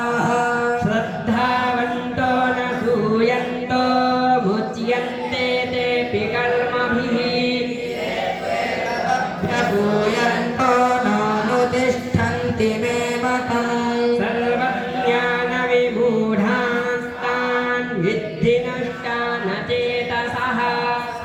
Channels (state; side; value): identical; both; correlation 1.00